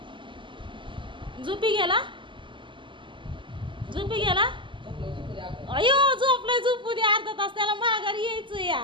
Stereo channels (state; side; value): late; left; 0.24 ms